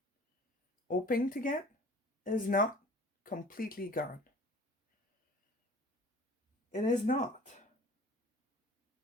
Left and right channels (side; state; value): both; normal; correlation 0.47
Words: hoping to get is not completely gone. It is not.